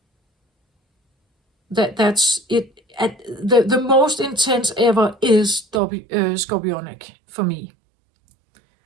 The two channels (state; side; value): drops out; left; at 5.8 s